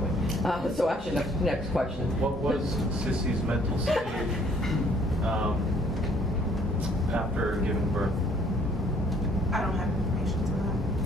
So actually, next question. What was Sissy's mental state after giving birth? I don't have information to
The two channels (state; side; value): normal; both; correlation 0.62